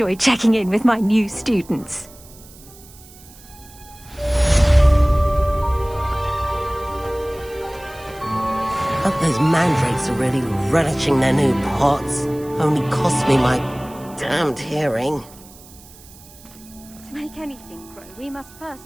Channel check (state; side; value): noise; right; hiss, 22 dB below the sound